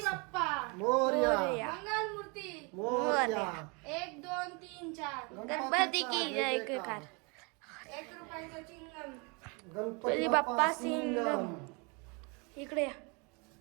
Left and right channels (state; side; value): quieter; left; 31.3 dB